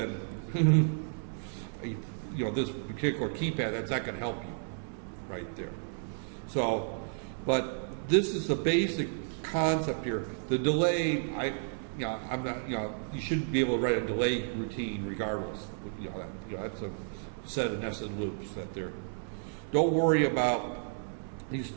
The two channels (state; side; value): silent; left; 56 dB below the other